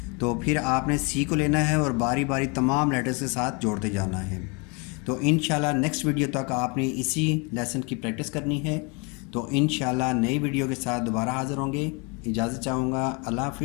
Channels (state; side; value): quieter; right; 31.4 dB